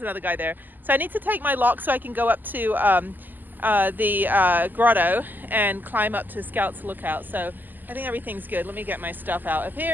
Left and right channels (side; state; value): left; late; 0.087 ms